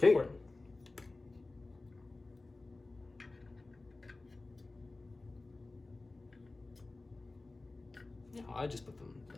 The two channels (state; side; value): quieter; right; 3.2 dB